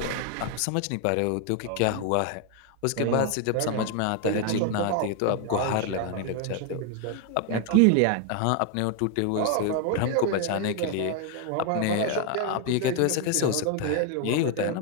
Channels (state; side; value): different; both; correlation 0.01